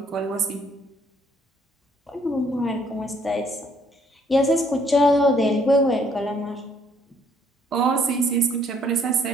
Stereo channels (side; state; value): both; normal; correlation 0.65